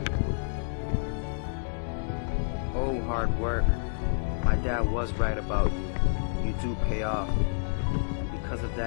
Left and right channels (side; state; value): right; silent; digital silence